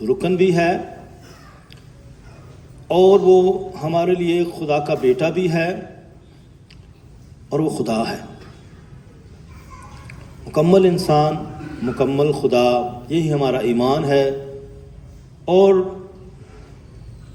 رکن بھی ہے اور وہ ہمارے لیے خدا کا بیٹا بھی ہے اور وہ خدا ہے، مکمل انسان، مکمل خدا، یہی ہمارا ایمان ہے۔ اور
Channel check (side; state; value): both; identical; correlation 1.00